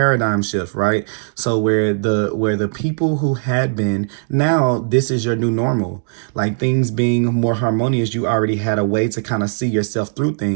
shift, right? So where the people who had been, now this is your new normal, like things being more harmonious, you already had a way to kind of see yourself through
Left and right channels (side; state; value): left; silent; 67 dB below the other